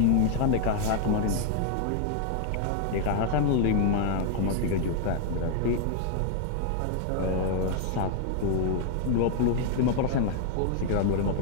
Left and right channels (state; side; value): different; both; correlation 0.00